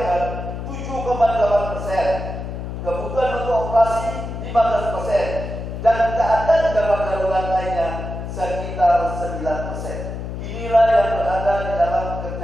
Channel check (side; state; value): left; noise; hum, 6 dB below the sound